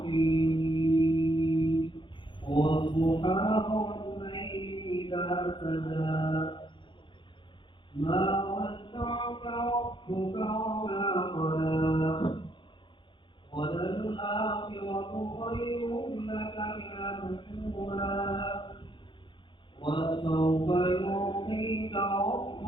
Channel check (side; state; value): right; late; 0.23 ms